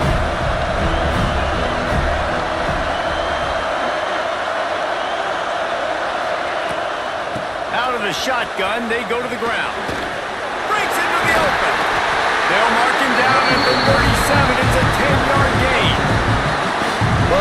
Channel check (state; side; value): identical; both; correlation 1.00